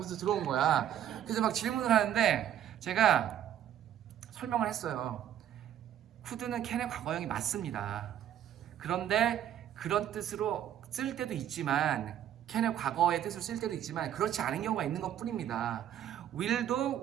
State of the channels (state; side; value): quieter; left; 10.7 dB